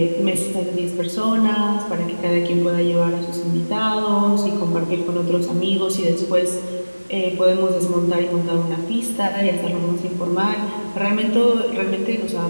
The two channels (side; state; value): both; inverted; correlation -1.00